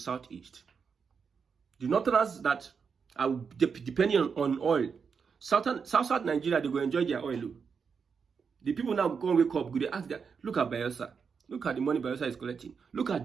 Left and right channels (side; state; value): left; quieter; 6.0 dB